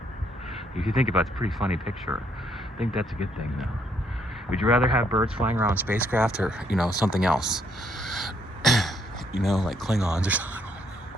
If you think about it, it's a pretty funny picture. I think that's a good thing, though. Would you rather have birds flying around spacecraft or, you know, something else? You know, like Klingons or something.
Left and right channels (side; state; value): both; normal; correlation 0.70